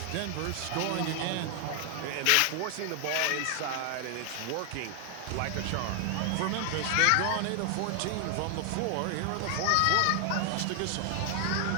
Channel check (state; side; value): different; both; correlation 0.00